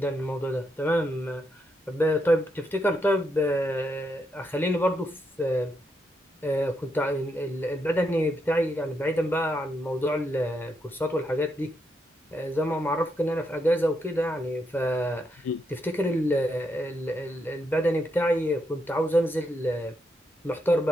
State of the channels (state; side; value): normal; both; correlation 0.80